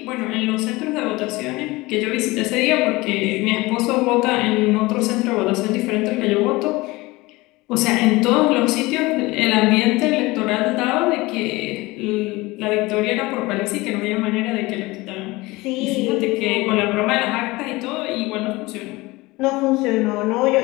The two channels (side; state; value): right; quieter; 21.5 dB